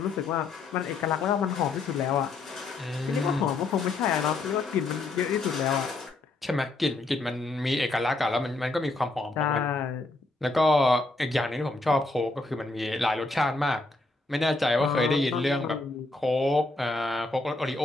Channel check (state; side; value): quieter; right; 3.2 dB